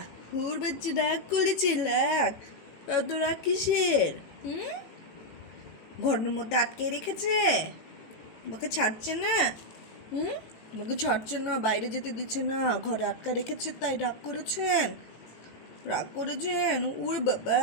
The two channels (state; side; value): late; right; 18 ms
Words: হুড় বাচ্চা রাগ করেছে, রাগ? এত রাগ কিসের? হুম, ঘরের মধ্যে আটকে রেখেছে, তোমাকে ছাড়ছে না? হুম, তোমাকে ছাড়ছে না, বাইরে যেতে দিচ্ছে না, ঘরে আটকা রেখেছে, তাই রাগ করেছেন? রাগ করেছেন? উরে বাবা,